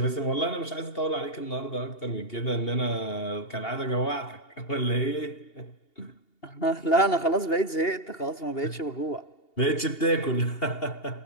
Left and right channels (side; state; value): right; late; 2.8 ms